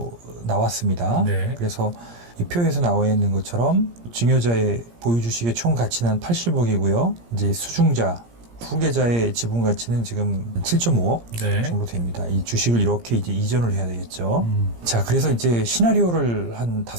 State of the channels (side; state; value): left; late; 17 ms